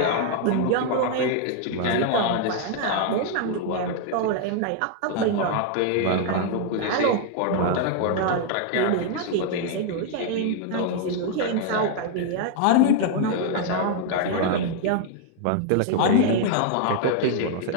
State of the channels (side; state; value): both; different; correlation 0.00